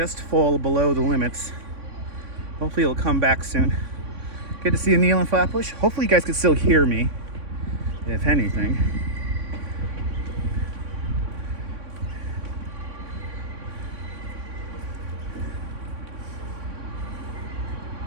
fall below the limits. Hopefully it'll come back soon. Good to see you, Neil and Flatbush. Hopefully you guys can still hear me, if anything.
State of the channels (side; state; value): left; late; 3.6 ms